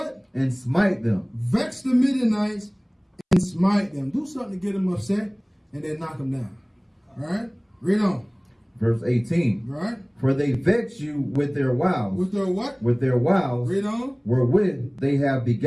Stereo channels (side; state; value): both; identical; correlation 1.00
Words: And smite them. Vex the Midianites and smite them. Do something to get them upset and then knock them down. All right? Read on. Verse 18. Right. For they vex you with their wiles. With their what? With their wiles. Read on. Wherewith they have